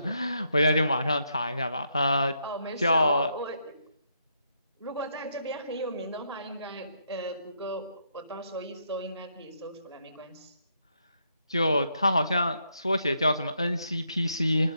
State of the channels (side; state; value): both; inverted; correlation -0.77